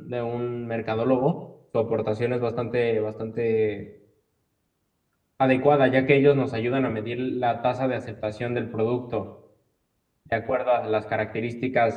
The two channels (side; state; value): both; identical; correlation 1.00